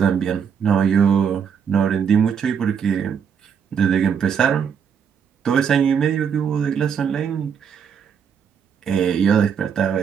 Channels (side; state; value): left; quieter; 7.3 dB